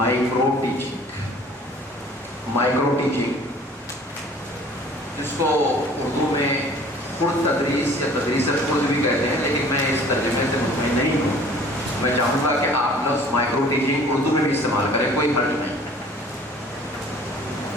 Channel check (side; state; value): both; normal; correlation 0.50